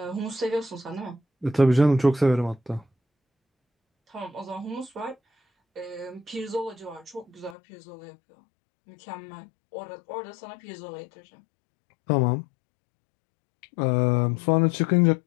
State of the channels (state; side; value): drops out; right; at 7.6 s